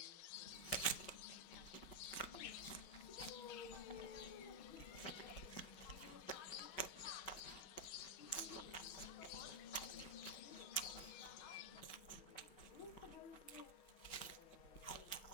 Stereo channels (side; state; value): right; late; 5.3 ms